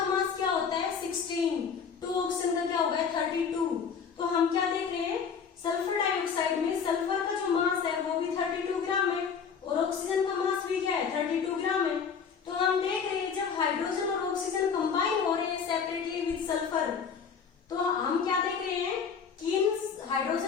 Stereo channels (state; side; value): quieter; right; 6.4 dB